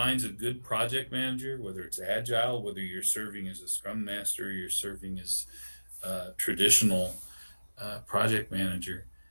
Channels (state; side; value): inverted; both; correlation -1.00